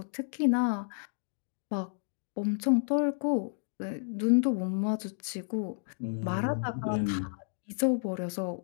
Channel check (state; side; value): silent; right; digital silence